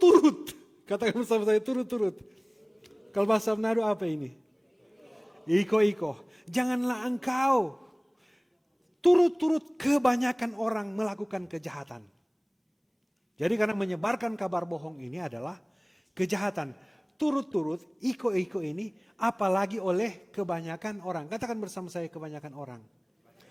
Katakan bersama saya, turut-turut. Kalau bahasa Manado apa ini? Iko-iko. Janganlah engkau turut-turut kebanyakan orang melakukan kejahatan. Jadi karena menyebarkan kabar bohong ini adalah kejahatan. Turut-turut, iko-iko ini apalagi oleh kebanyakan orang. Katakan bersama saya, kebanyakan orang.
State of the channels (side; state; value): both; identical; correlation 1.00